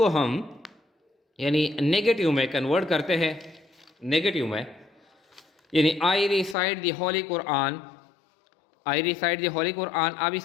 हम यानी नेगेटिव में कन्वर्ट करते हैं, नेगेटिव में यानी आई recite the holy Quran, I recite the holy Quran. अब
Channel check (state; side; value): drops out; right; at 6.6 s